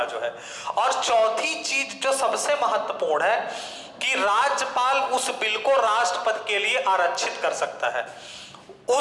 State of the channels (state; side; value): identical; both; correlation 1.00